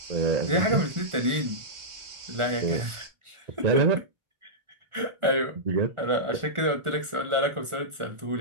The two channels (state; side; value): late; left; 1.4 ms